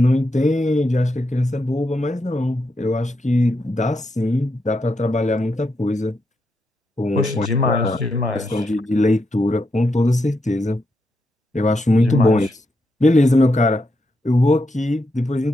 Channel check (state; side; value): normal; both; correlation 0.83